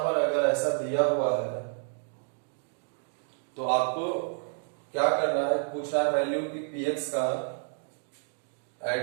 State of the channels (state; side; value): silent; left; 58 dB below the other